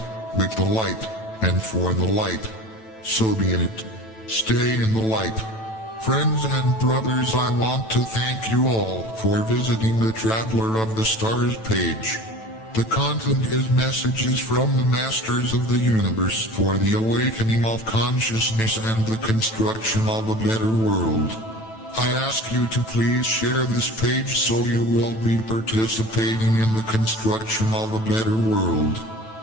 with the light, and for the light. So be it. Stay in the light. Friends and brothers, I want to thank you all for visiting the Traveler of the Stars page. The content is messages from the Masters of the Universe for the awakening of consciousness and the construction of a better world. I ask you to please share this page so you will be participating in the construction of a better world.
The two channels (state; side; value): late; right; 9.1 ms